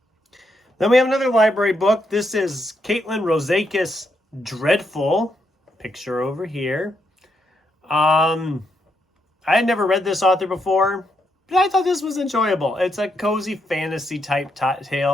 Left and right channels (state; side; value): normal; both; correlation 0.79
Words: Then we have another library book. This is Caitlin Rosakis Dreadful. Picture over here. I had never read this author before, but I thought this was enjoyable. It's a cozy fantasy type